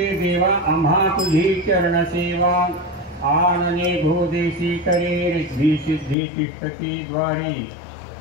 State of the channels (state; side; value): drops out; right; at 6.2 s